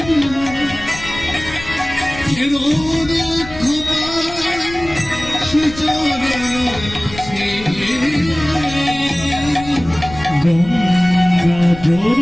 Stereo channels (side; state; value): left; noise; rumble, 14 dB below the sound